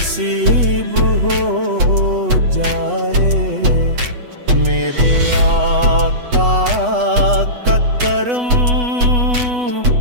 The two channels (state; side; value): late; left; 8.1 ms